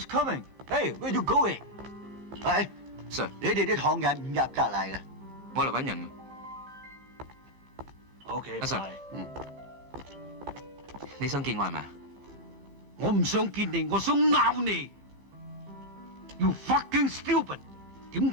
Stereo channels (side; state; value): left; late; 14 ms